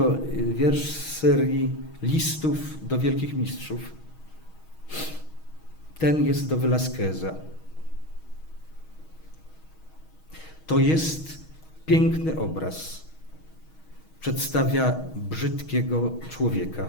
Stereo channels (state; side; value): late; right; 6.3 ms